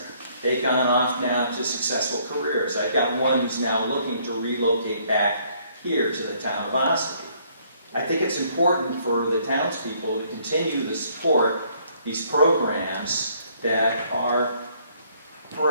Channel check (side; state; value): both; inverted; correlation -0.65